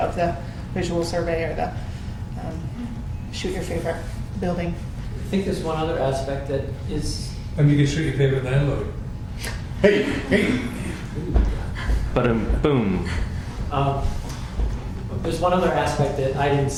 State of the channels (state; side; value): identical; both; correlation 1.00